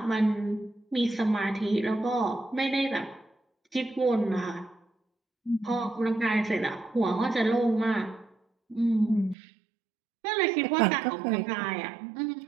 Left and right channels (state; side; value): drops out; left; at 9.3 s